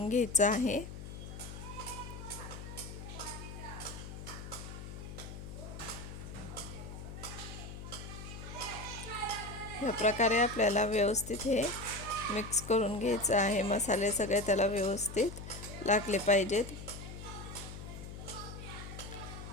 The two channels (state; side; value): noise; left; hum, 10 dB below the sound